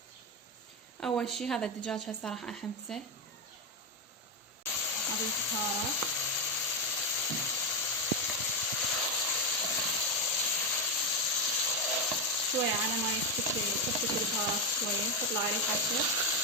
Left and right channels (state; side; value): normal; both; correlation 0.07